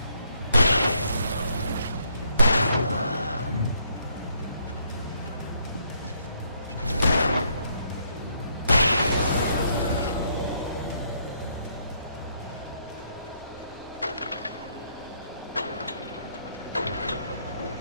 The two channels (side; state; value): both; inverted; correlation -0.70